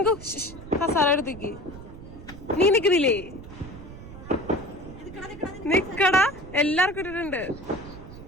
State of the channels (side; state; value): right; noise; rumble, 15 dB below the sound